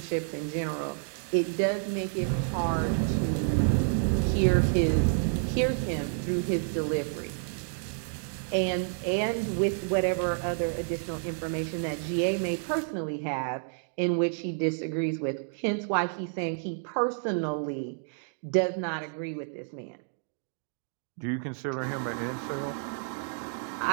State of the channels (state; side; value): silent; left; digital silence